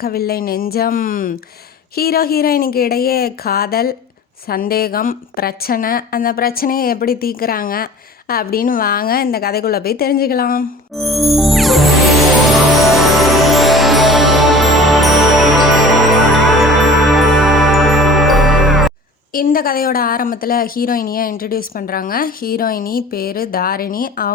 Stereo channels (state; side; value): normal; both; correlation 0.43